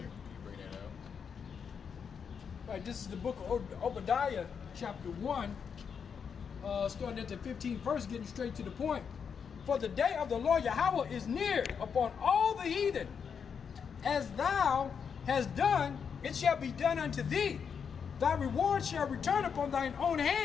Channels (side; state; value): right; quieter; 6.7 dB